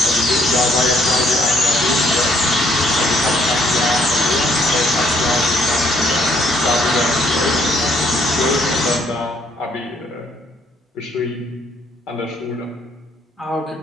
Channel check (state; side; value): normal; both; correlation 0.67